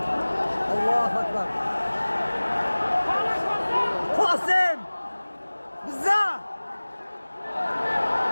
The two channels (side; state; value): both; inverted; correlation -1.00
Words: الله اکبر قاسم بزا